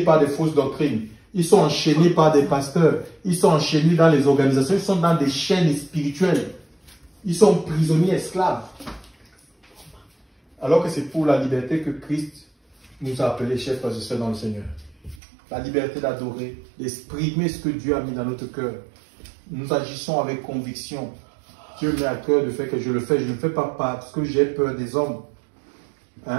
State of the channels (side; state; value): left; drops out; at 15.2 s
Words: par des fausses doctrines. Ils sont enchaînés par des pasteurs. Ils sont enchaînés dans les organisations. Ils sont dans des chaînes spirituelles. Ils sont prisonniers, esclaves. Alors que c'est pour la liberté que Christ nous a appelés, chers frères et sœurs dans le Seigneur. la liberté d'adorer, d'exprimer ce que Dieu a mis dans notre cœur. Nous agissons avec conviction. Dieu met à cœur de faire que je le fais. Je ne le fais pas parce que j'ai peur des hommes.